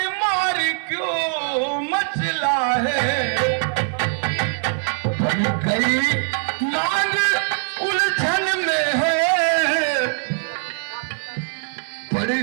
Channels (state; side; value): silent; left; 56 dB below the other